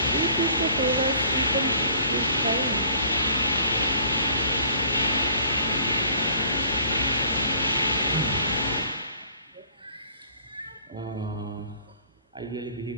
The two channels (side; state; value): both; inverted; correlation -0.55